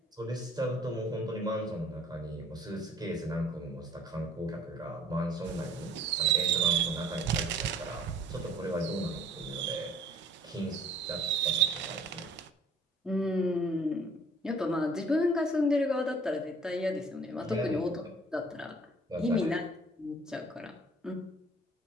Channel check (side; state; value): both; normal; correlation 0.54